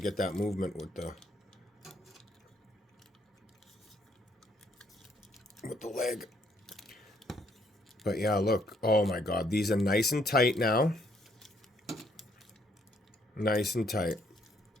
that movement with the leg. But yeah, look. Oh my God. These are nice and tight now. Nice and tight.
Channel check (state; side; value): normal; both; correlation 0.69